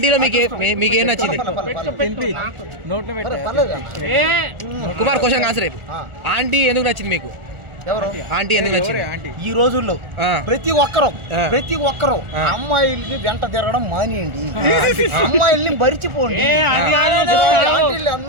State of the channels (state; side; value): late; left; 1.4 ms